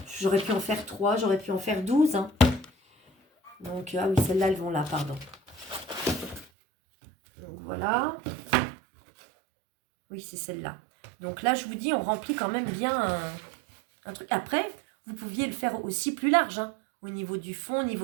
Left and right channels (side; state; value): left; drops out; at 6.5 s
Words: J'aurais pu en faire 3, j'aurais pu en faire 12. Hein. Donc, ah oui, celles-là, elles vont là, pardon. Donc voilà. Oui, c'est celle-là. Donc là, je vous dis, on remplit quand même bien un truc. Après, vous pouviez le faire aussi plus large, hein. Au niveau du fond, au